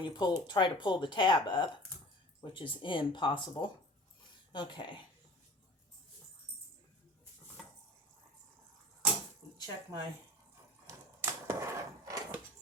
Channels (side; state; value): both; normal; correlation 0.42